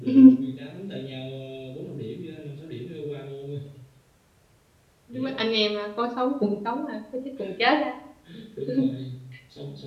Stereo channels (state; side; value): identical; both; correlation 1.00